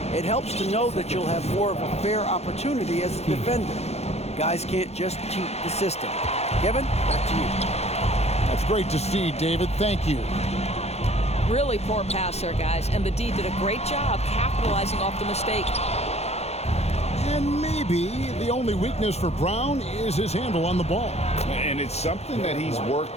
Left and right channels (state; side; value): late; right; 0.31 ms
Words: it helps to know that you'll have more of a fair opportunity as a defender. Guys can't just cheat the system. Kevin, back to you. That's great to see, David. Thank you. Really poor pass there, guys, and the D did a great job capitalizing off the mistake. And maybe the only weakness for Brown is his handle on the ball. And it's something that he's